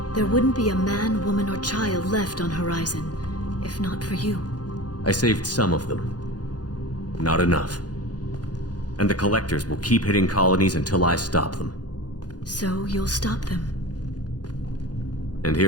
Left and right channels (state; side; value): late; right; 0.69 ms